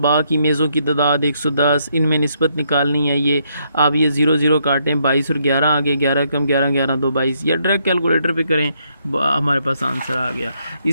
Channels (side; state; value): both; inverted; correlation -0.74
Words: की मेज़ों की तादाद 110, इनमें निस्बत निकालनी है। ये आप ये 0 0 काटें, 22 और 11 आ गए, 11 कम 11 11 2 22, या डायरेक्ट कैलकुलेटर पे करें, हमारे पास आंसर आ गया।